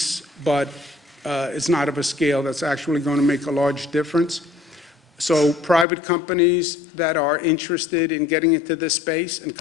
but it's not of a scale that's actually going to make a large difference. So private companies that are interested in getting into this space and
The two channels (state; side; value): drops out; right; at 5.9 s